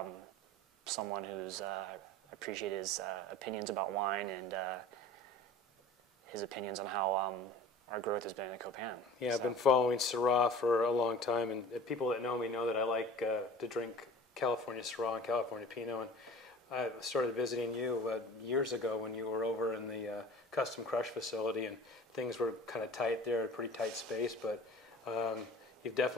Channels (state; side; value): normal; both; correlation 0.42